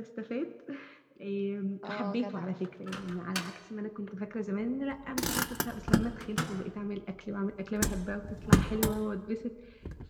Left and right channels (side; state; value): both; identical; correlation 1.00